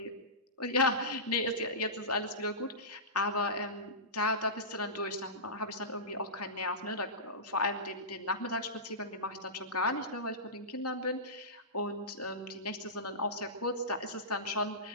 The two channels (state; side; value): normal; both; correlation -0.20